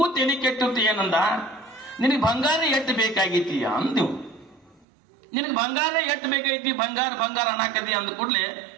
ತೆಲಿ ಕೆಟ್ಟಿತ್ತು. ಏನಂದ, ನಿನಗೆ ಬಂಗಾರ ಎಟ್ಟು ಬೇಕಾಗೈತಿ ಅಂದಿವು. ನಿನಗೆ ಬಂಗಾರ ಎಟ್ಟು ಬೇಕಾಗೈತಿ, ಬಂಗಾರ ಅನ್ನಕತಿ ಅಂದ ಕೂಡ್ಲೆ,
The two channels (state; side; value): drops out; left; at 4.9 s